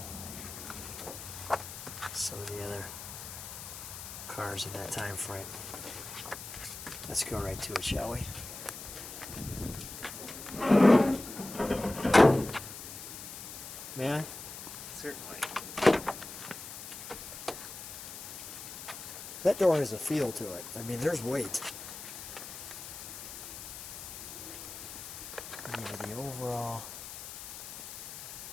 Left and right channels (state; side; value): noise; left; hiss, 10 dB below the sound